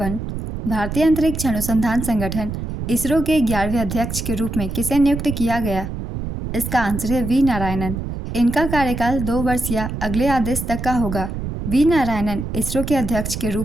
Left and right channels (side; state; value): right; noise; rumble, 5 dB below the sound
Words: भारतीय अंतरिक्ष अनुसंधान संगठन इसरो के 11वें अध्यक्ष के रूप में किसे नियुक्त किया गया? इसका आंसर है वी नारायणन। इनका कार्यकाल 2 वर्ष या अगले आदेश तक का होगा। वी नारायणन इसरो के अध्यक्ष के